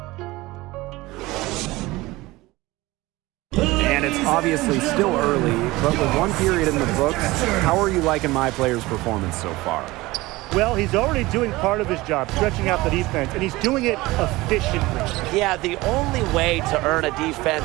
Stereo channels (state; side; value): quieter; left; 20.1 dB